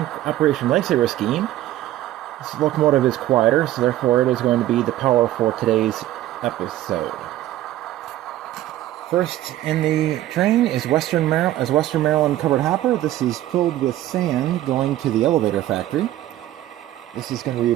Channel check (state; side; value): quieter; left; 14.1 dB